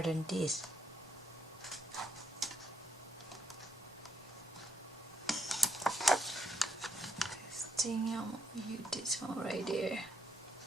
than this. This thing, I'm gonna use this one right there.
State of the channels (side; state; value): both; normal; correlation 0.75